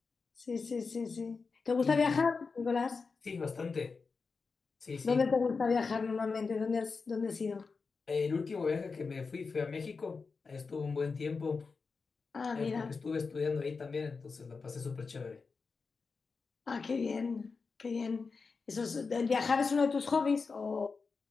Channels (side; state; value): right; quieter; 4.7 dB